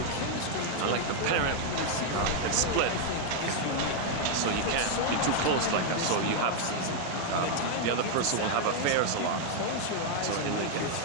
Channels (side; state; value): both; different; correlation 0.00